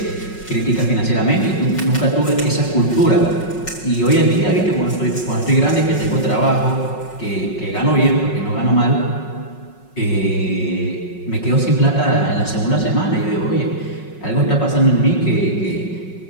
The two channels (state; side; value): late; right; 5.4 ms